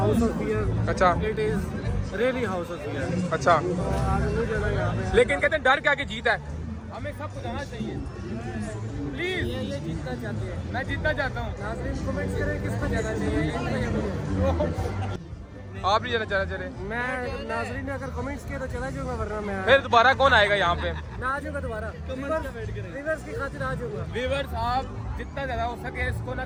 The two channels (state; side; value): identical; both; correlation 1.00